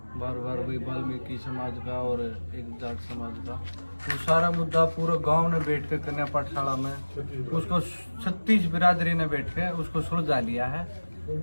बार बार वही वाल्मीकि समाज का और एक जाट समाज का, वो सारा मुद्दा पूरा गांव ने बैठ के कन्या पाठशाला में उसको 36 बिरादरी ने बैठ के उसको सुलझा लिया है।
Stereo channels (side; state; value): both; inverted; correlation -1.00